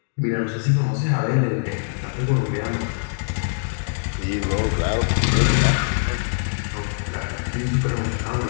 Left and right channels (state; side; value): silent; right; digital silence